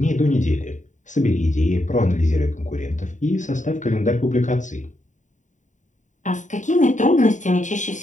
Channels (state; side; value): late; right; 0.36 ms